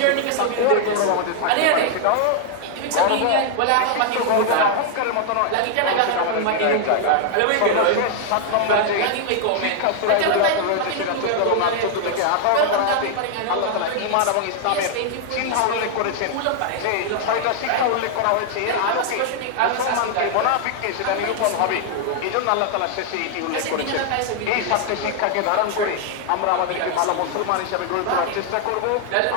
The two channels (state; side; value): different; both; correlation 0.00